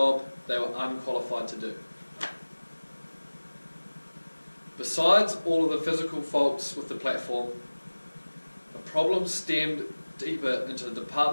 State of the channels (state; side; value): inverted; both; correlation -1.00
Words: they were unqualified to do. Besides all of the physical faults with the platform, the problem stemmed deeper into the